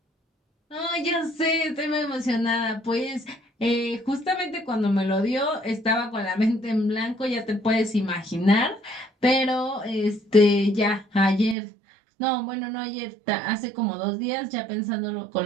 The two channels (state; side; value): drops out; left; at 11.6 s